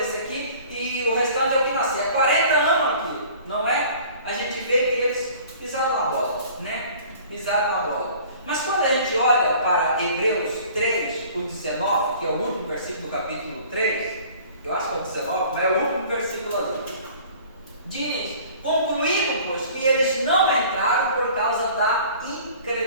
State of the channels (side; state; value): both; inverted; correlation -0.48